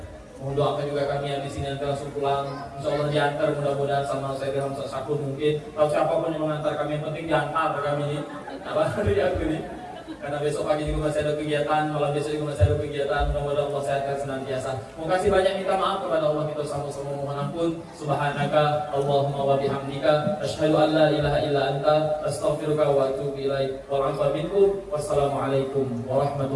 Mohon doakan juga kami yang di sini nanti langsung pulang. Insyaallah diantar mudah-mudahan sama saya dengan Ustaz Syakur mungkin. Atau siapapun yang mengantar kami yang penting diantar kami ini. Apa dari aku ini? Karena besok pagi juga masih ada kegiatan, malam besok juga masih ada kegiatan. Mudah-mudahan Allah sehatkan senantiasa. Terima kasih banyak minta maaf kepada Allah kita sama-sama mohon ampun. Subhanaka Allahumma wa bihamdika asyhadu an la ilaha illa anta astaghfiruka wa atubu ilaik. Wal 'afwa minkum. Wassalamualaikum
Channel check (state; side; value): identical; both; correlation 1.00